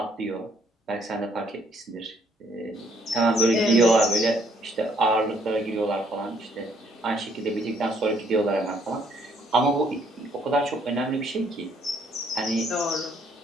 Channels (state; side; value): normal; both; correlation 0.66